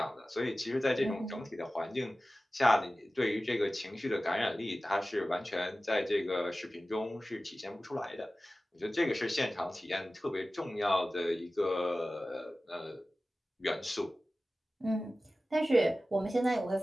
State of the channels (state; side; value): normal; both; correlation 0.96